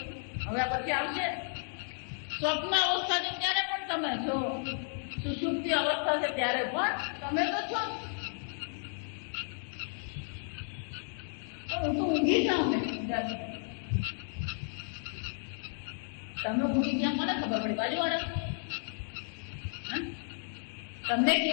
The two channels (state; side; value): silent; right; 56 dB below the other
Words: હવે પછી આવશે સ્વપ્ન અવસ્થા છે ત્યારે પણ તમે છો. સુષુપ્તિ અવસ્થા છે ત્યારે પણ તમે તો છો. હું તો ઊંઘી જાઉં ને તમે ઊંઘી ગયા મને ખબર પડી? બાજુવાળા તમને